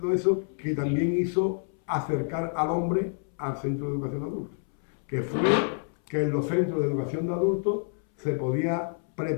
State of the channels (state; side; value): silent; right; 60 dB below the other